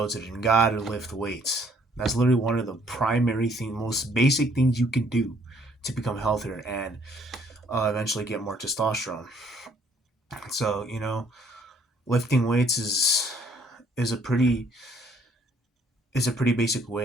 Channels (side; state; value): both; normal; correlation 0.63